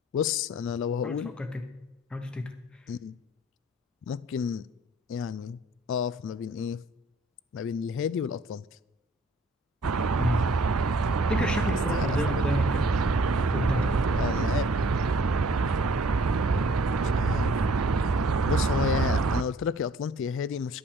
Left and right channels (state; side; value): normal; both; correlation 0.56